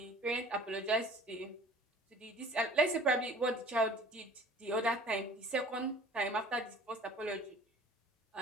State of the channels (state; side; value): normal; both; correlation 0.48